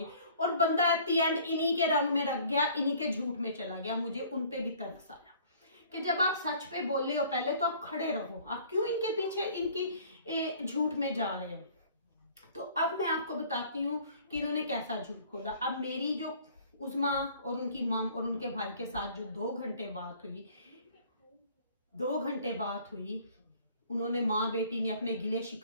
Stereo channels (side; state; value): both; inverted; correlation -0.53